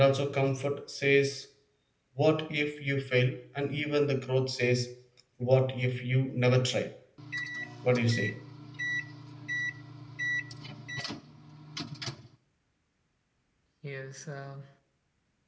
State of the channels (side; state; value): both; identical; correlation 1.00